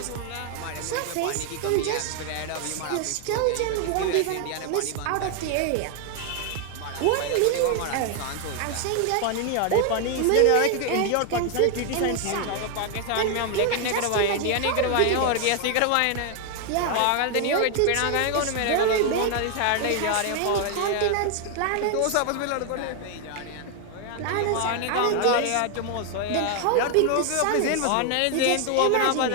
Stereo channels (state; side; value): different; both; correlation 0.01